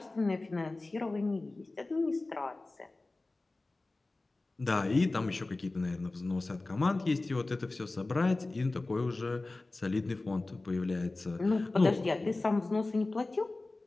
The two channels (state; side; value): quieter; right; 3.1 dB